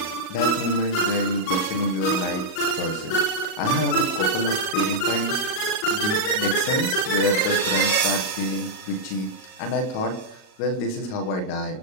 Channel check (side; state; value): right; late; 38 ms